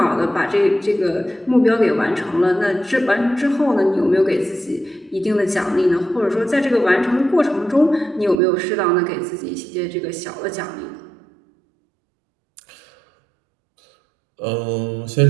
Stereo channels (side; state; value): left; drops out; at 8.4 s